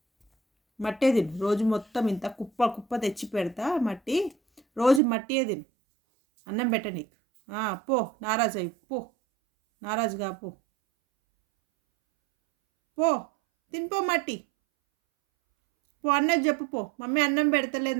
మట్టే తిను రోజు మొత్తం. ఇంత కుప్ప కుప్ప తెచ్చి పెడతా మట్టి. రోజు మట్టియే తిను. అన్నం పెట్ట నీకు. పో, నారాజు అయ్యి పో, నారాజుగా పో. పో, తినిపో మట్టి. పో, అన్నది చెప్పు పో. మమ్మీ అన్నం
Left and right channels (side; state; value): left; drops out; at 5.0 s